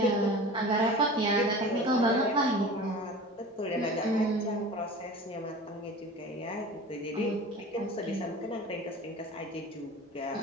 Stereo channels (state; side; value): normal; both; correlation 0.37